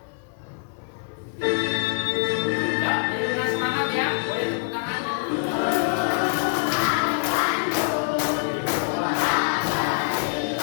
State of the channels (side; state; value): right; silent; 62 dB below the other